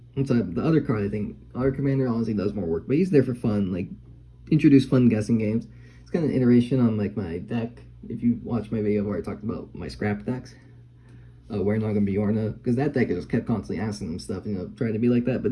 the other card, I think, Other Commander honestly does more work, but he's there for fun. Like, introduce fun guessing games. It's kind of an iteration on, like, my deck. If you watch my video where I talked about my scrap decks, Wernaga and Bjorna, because that deck just kept constantly asking them stuff, trying to be like that, but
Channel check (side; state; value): both; identical; correlation 1.00